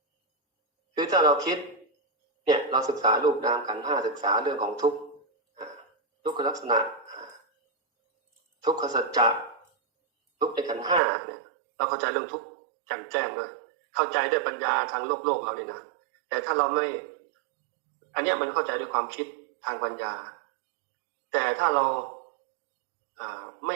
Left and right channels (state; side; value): drops out; left; at 11.0 s